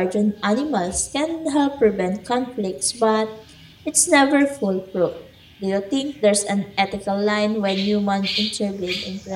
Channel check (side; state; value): both; identical; correlation 1.00